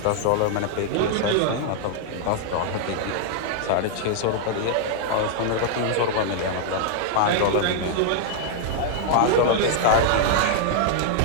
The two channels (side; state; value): both; different; correlation -0.01